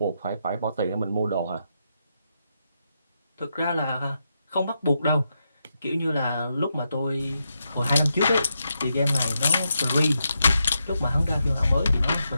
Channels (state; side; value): inverted; both; correlation -0.84